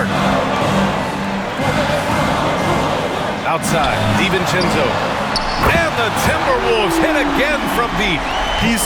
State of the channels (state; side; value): identical; both; correlation 1.00